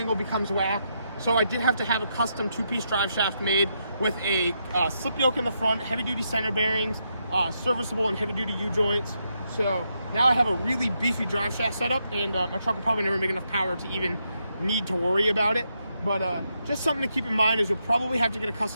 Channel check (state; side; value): inverted; both; correlation -0.81